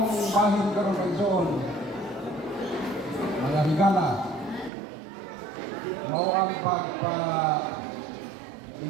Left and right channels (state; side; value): drops out; left; at 4.7 s